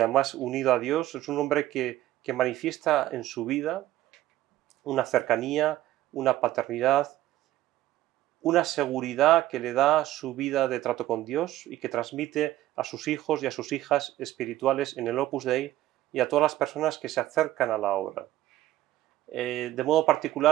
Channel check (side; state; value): left; quieter; 14.7 dB